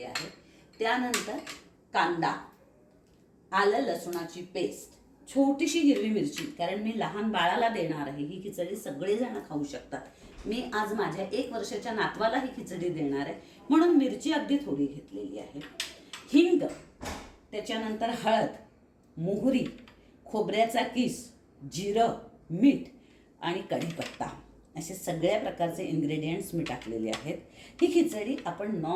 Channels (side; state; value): both; identical; correlation 1.00